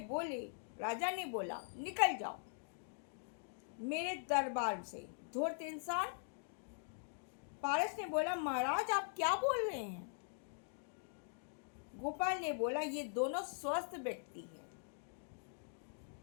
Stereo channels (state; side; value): silent; right; digital silence